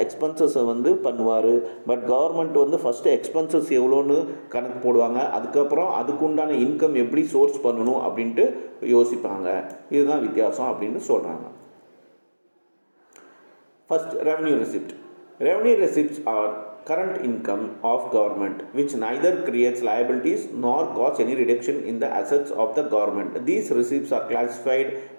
எக்ஸ்பென்சஸை வந்து பண்ணுவார். பட் கவர்மெண்ட் வந்து ஃபஸ்ட்டு எக்ஸ்பென்சஸ் எவ்வளோன்னு கணக்கு போடுவாங்க, அதுக்கப்புறம் அதுக்குண்டான இன்கம் எப்படி சோர்ஸ் பண்ணணும் அப்படின்ட்டு யோசிப்பாங்க. இதுதான் வித்தியாசம் அப்படின்னு சொல்கிறாங்க. First, revenue receipt. Revenue receipts are current income of government which neither creates liabilities nor cause any reduction in the assets of the government. These receipts are classified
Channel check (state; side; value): inverted; both; correlation -1.00